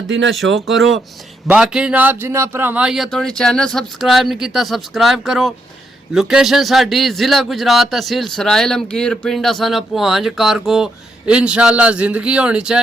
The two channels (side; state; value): both; normal; correlation 0.78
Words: ना शो करो। बाकी जनाब जिन्हें भरावां या थोड़ी चैनल सबसक्राइब नहीं किया सबसक्राइब करो। लोकेशन साडी जिला गुजरात तहसील सराय लमकीर पिंड असाना पुहांज कारगो। इंशाल्लाह जिंदगी होनी